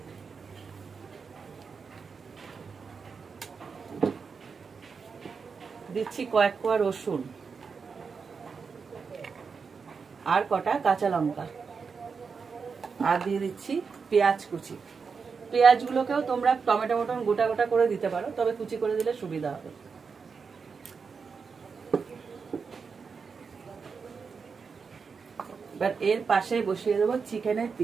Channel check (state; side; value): quieter; left; 5.4 dB